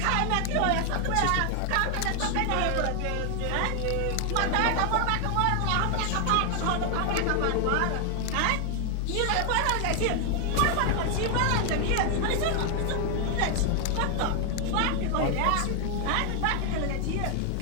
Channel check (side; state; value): both; different; correlation 0.00